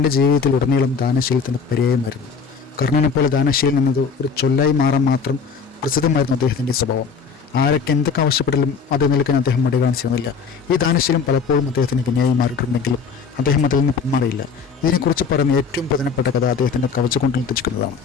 ജീവിതത്തിൽ ഉടനീളം ദാനശീലത്തിൻ്റെ പര്യായമായിരുന്നു. കർണനെപ്പോലെ ദാനശീലം എന്നത് ഒരു ചൊല്ലായി മാറാൻ മാത്രം പ്രസിദ്ധമായിരുന്നു അദ്ദേഹത്തിൻ്റെ സ്വഭാവം. ആരൊക്കെ എന്തൊക്കെ ആവശ്യപ്പെട്ടാലും അത് നിൽക്കാൻ അദ്ദേഹം മടി കാണിച്ചിരുന്നില്ല. ഈ ദാനശീലം പലപ്പോഴും അദ്ദേഹത്തിന് വിനയായി മാറിയിട്ടുണ്ടെങ്കിലും അദ്ദേഹം അതിൽ നിന്ന് പിന്മാറിയില്ല. ഇതിനെക്കുറിച്ച് പറയുന്ന ഏറ്റവും പ്രധാനപ്പെട്ട കഥ അദ്ദേഹത്തിൻ്റെ കവചകുണ്ടലം തെറ്റിക്കുന്നതാണ്.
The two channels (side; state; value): right; quieter; 5.6 dB